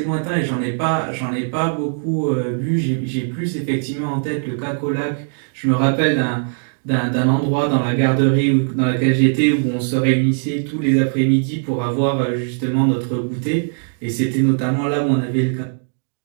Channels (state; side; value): silent; left; digital silence